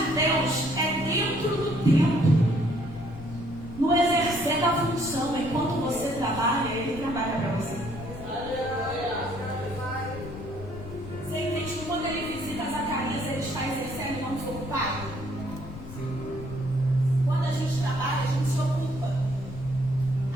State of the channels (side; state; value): left; noise; rumble, 12 dB below the sound